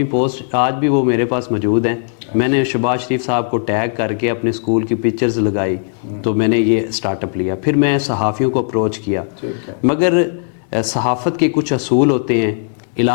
پوسٹ آج بھی وہ میرے پاس موجود ہیں۔ میں نے شہباز شریف صاحب کو ٹیگ کر کے اپنے اسکول کی پکچرز لگائی، تو میں نے یہ اسٹارٹ اپ لیا۔ پھر میں صحافیوں کو اپروچ کیا، ٹھیک ہے، مگر صحافت کے کچھ اصول ہوتے ہیں،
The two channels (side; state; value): right; silent; 67 dB below the other